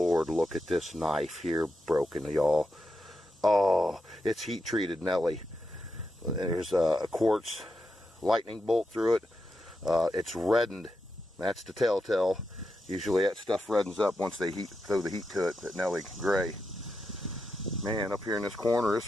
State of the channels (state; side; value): normal; both; correlation 0.86